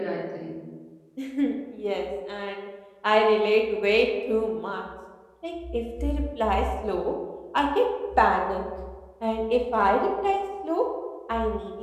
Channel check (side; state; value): both; identical; correlation 1.00